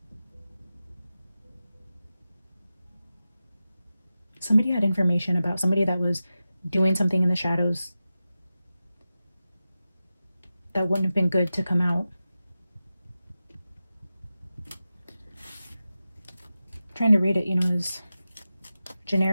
Somebody had information about somebody that was doing something in the shadows that wouldn't have been good to come out. I'm trying to read it, you know, as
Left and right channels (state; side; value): inverted; both; correlation -0.93